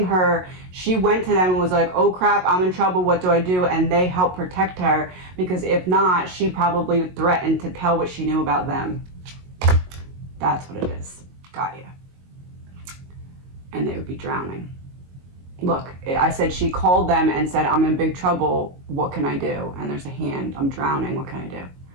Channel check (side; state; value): left; late; 22 ms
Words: her. She went to them and was like, oh crap, I'm in trouble, what do I do? And they helped protect her, because if not, she probably threatened to tell what she knew about them. That's what it is. Got you. And they would be drowning. Look, I said she called them and said, I'm in big trouble, what can I do? And there's a hand, I'm drowning, what can I do?